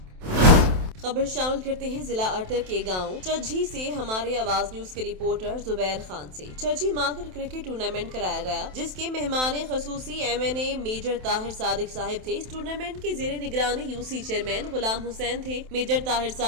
खबर शामिल करते हैं जिला अटक के गांव चज्जी से हमारे आवाज न्यूज के रिपोर्टर जुबैर खान से। चज्जी माकर क्रिकेट टूर्नामेंट कराया गया, जिसके मेहमान खसूसी MNA मेजर ताहिर सादिक साहिब थे। इस टूर्नामेंट के जेर निगरानी UC चेयरमैन गुलाम हुसैन थे। मेजर ताहिर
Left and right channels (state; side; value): late; left; 27 ms